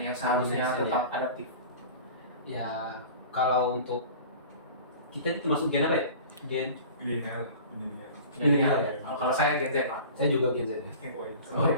seharusnya ASN, tetap adaptif. ya, kalau untuk kita masuk gen apa ya? Gen Milenial. Milenial ya? Kalau saya Gen Z, Pak. Saya juga Gen Z ya. Oh,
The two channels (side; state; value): both; inverted; correlation -0.40